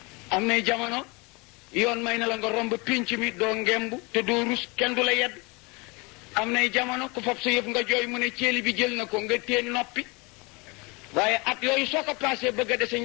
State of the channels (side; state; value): right; quieter; 27.4 dB